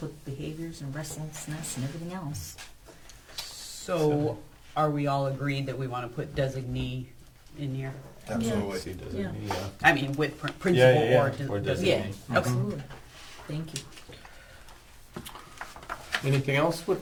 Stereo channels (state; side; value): identical; both; correlation 1.00